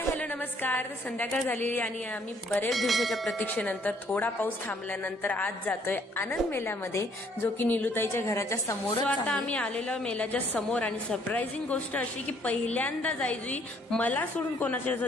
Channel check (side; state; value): both; normal; correlation 0.64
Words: hello नमस्कार. संध्याकाळ झालेली आणि आम्ही बरेच दिवसाच्या प्रतीक्षेनंतर थोडा पाऊस थांबल्यानंतर आज जातोय आनंद मेल्यामध्ये, जो की निलुताईच्या घराच्या समोर. आता आम्ही आलेलो मेल्याच्या समोर आणि सरप्राइझिंग गोष्ट अशी की पहिल्यांदा जायजुई मला सोडून कोणाच्या